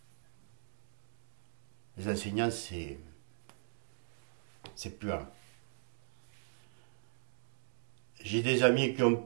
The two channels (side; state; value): left; silent; digital silence